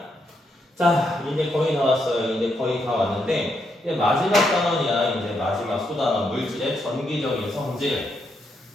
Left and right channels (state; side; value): normal; both; correlation 0.79